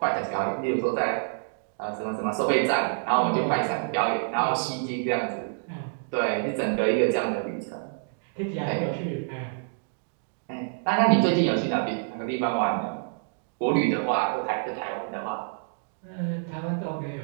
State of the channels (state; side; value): silent; left; digital silence